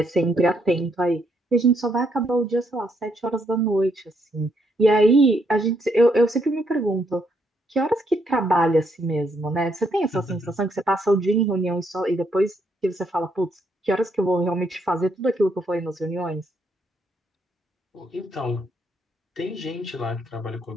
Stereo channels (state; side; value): normal; both; correlation 0.74